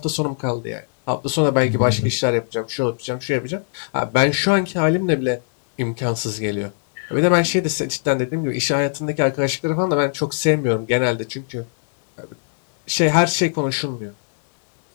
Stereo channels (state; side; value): silent; right; digital silence